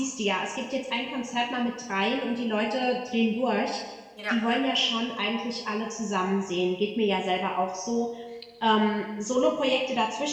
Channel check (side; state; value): both; identical; correlation 1.00